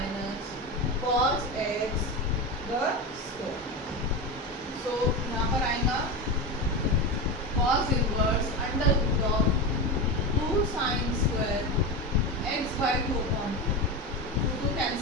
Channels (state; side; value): normal; both; correlation 0.19